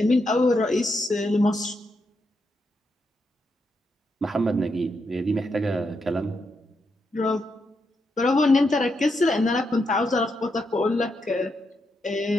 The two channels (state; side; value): normal; both; correlation 0.82